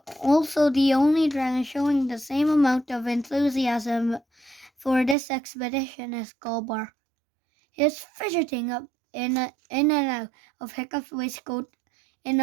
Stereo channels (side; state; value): left; drops out; at 5.2 s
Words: also the only dragon showing the same amount of enthusiasm for this expedition as Gobar. He was fidgeting up in and out of Hiccup's waistcoat in